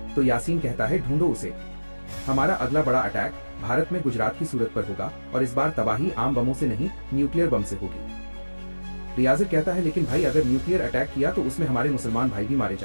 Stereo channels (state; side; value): inverted; both; correlation -1.00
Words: तो यासीन कहता है, ढूंढो उसे। हमारा अगला बड़ा अटैक भारत में गुजरात की सूरत पर होगा, और इस बार तबाही आम बमों से नहीं, न्यूक्लियर बम से होगी। रियाज कहता है, लेकिन भाई अगर न्यूक्लियर अटैक किया तो उसमें हमारे मुसलमान भाई भी मारे